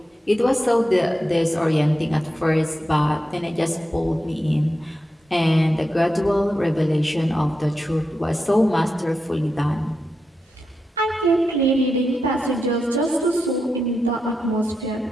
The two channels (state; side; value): normal; both; correlation 0.87